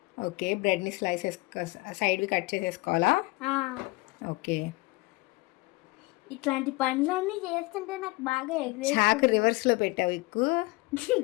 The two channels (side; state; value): right; quieter; 23.1 dB